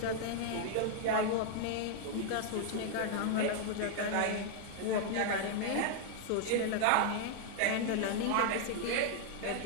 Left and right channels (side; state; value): both; different; correlation 0.00